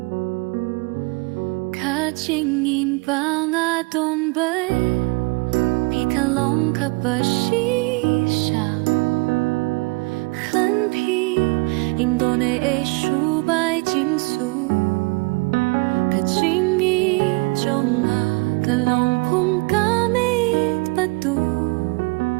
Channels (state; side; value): quieter; left; 28.7 dB